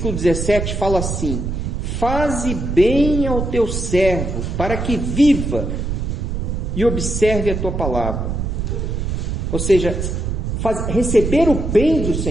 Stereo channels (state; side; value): noise; right; rumble, 2 dB below the sound